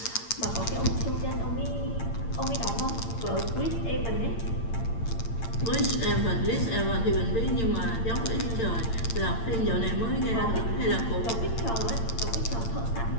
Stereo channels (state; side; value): late; right; 8.8 ms